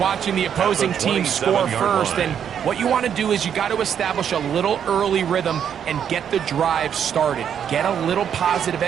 the opposing team score first, and what you want to do is you got to establish a little early rhythm and get the drive started. Get a little positive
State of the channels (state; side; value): quieter; left; 8.5 dB